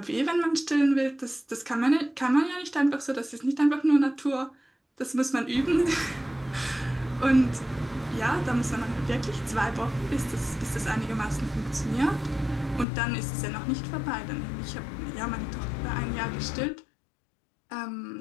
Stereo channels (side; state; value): right; drops out; at 12.9 s